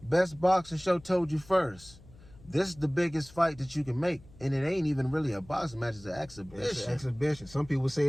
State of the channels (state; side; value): noise; left; hum, 22 dB below the sound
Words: Best Boxing Show told you first. This is the biggest fight that you can make, and it ain't even really a boxing match. It's an exhibition. It's an exhibition. Some people say